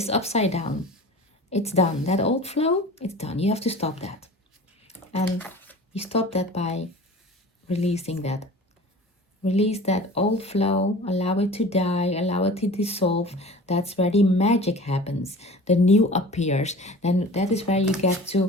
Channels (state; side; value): normal; both; correlation 0.40